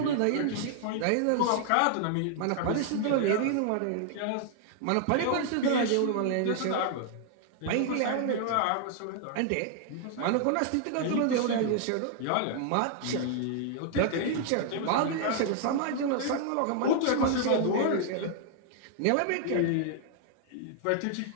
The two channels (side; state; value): both; different; correlation 0.00